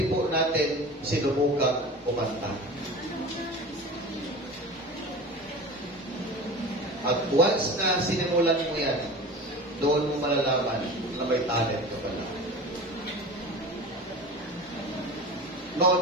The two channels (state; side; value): normal; both; correlation 0.34